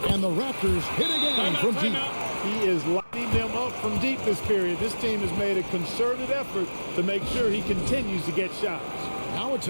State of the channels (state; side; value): inverted; both; correlation -1.00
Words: and the Raptors hit again from deep. He is lighting them up from deep this period. This team has made a concerted effort to make sure he continues to get shots. Now a